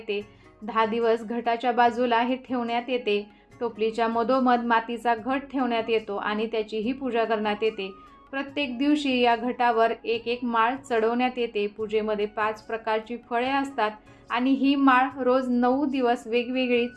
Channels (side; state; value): both; identical; correlation 1.00